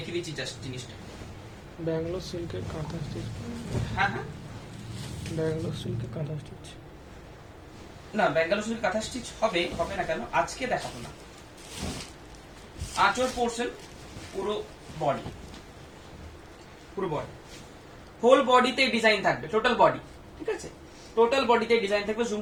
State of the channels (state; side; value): identical; both; correlation 1.00